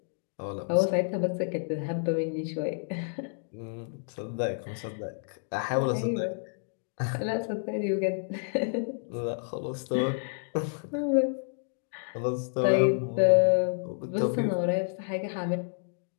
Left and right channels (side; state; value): right; silent; digital silence